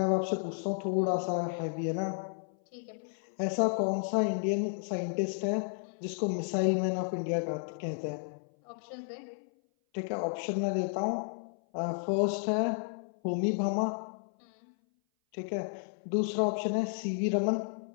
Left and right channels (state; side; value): silent; right; 56 dB below the other